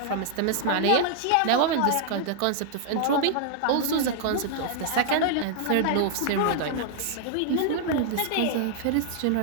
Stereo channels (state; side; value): different; both; correlation 0.00